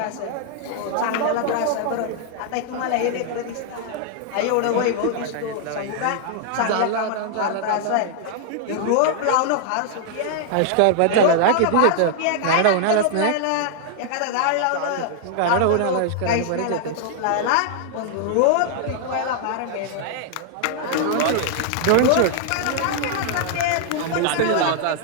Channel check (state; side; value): different; both; correlation -0.01